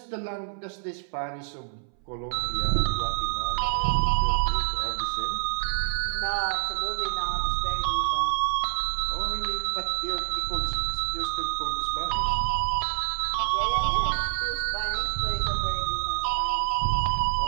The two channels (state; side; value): silent; left; 60 dB below the other